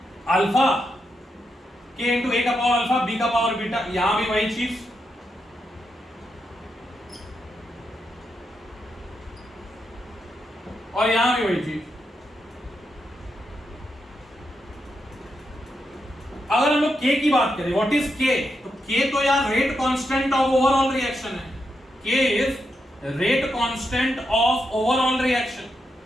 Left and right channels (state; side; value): normal; both; correlation 0.84